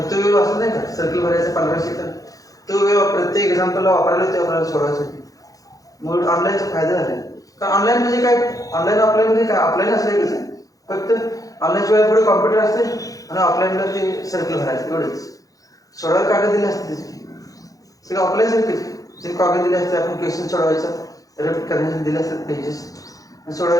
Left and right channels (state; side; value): late; right; 0.17 ms